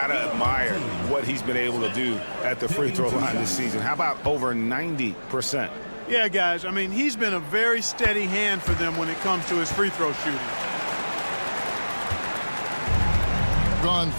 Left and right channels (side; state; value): both; inverted; correlation -1.00